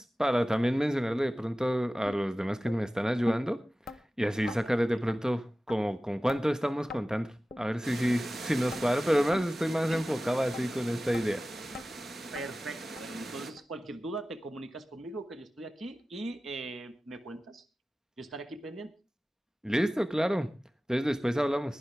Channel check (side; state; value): both; normal; correlation 0.96